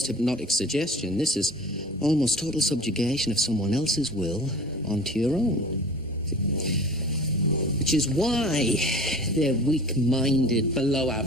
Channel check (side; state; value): both; normal; correlation 0.41